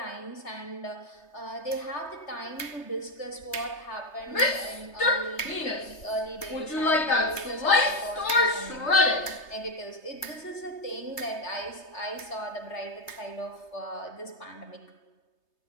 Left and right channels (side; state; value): right; late; 3.3 ms